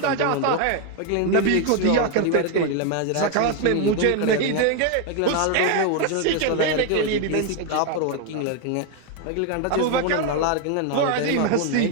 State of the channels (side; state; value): both; different; correlation 0.01